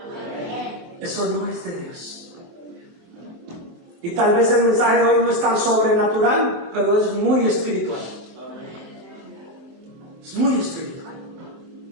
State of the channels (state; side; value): late; left; 23 ms